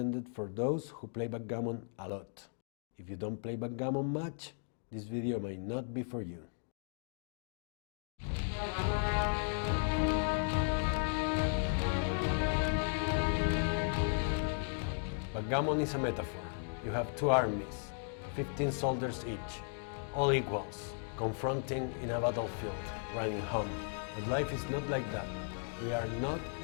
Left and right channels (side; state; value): right; silent; 54 dB below the other